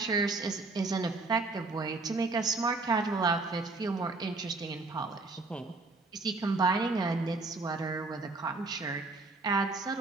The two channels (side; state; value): left; quieter; 3.6 dB